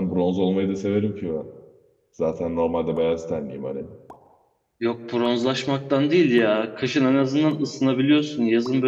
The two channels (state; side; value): identical; both; correlation 1.00